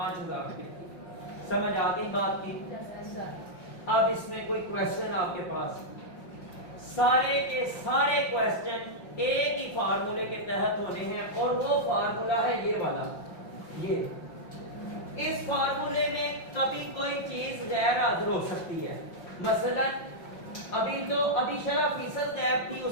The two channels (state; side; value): late; right; 5.7 ms